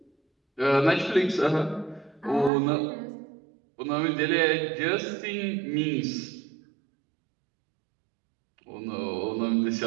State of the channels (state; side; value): drops out; left; at 2.5 s